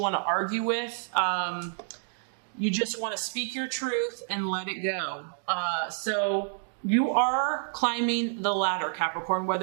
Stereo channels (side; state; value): left; silent; digital silence